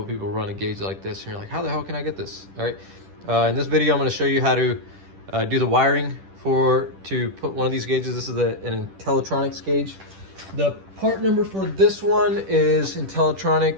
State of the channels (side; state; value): left; late; 10 ms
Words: people run a gauge like this, and you're like, how the hell can I get this? All right, in this video, I'm gonna show you how to do the wiring to put one of these gauges. This is an Intellitronics gauge. The part number for this one is